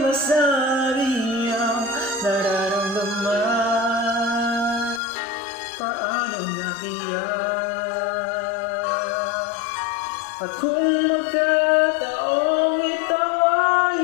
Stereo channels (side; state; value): right; drops out; at 5.0 s